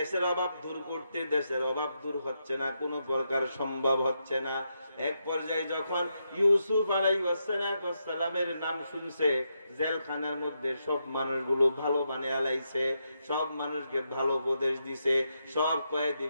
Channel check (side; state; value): both; inverted; correlation -0.82